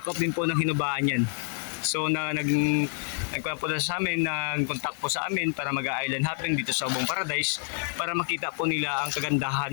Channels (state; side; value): silent; right; digital silence